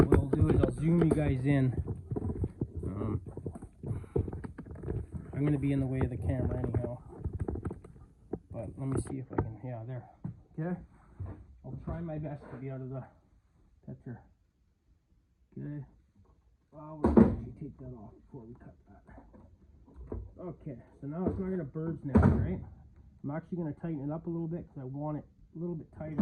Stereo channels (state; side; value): identical; both; correlation 1.00